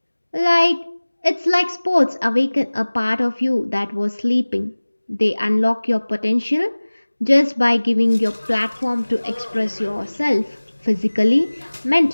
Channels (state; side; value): inverted; both; correlation -1.00